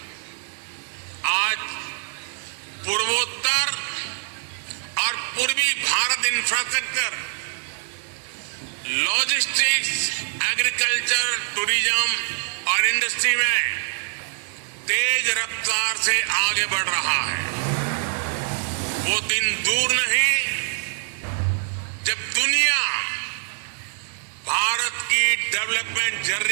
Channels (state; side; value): silent; left; digital silence